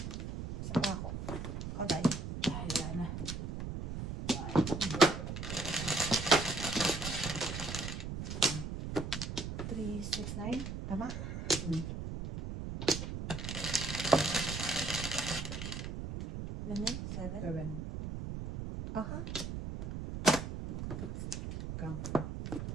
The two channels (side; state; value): right; noise; rumble, 5 dB below the sound